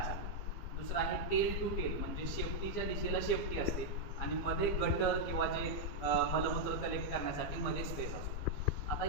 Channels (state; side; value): late; right; 15 ms